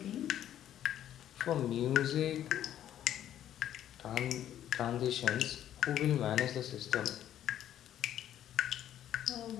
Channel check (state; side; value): quieter; right; 11.2 dB